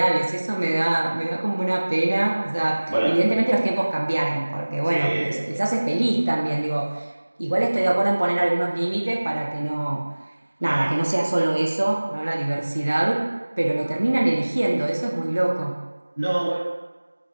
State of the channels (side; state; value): both; inverted; correlation -1.00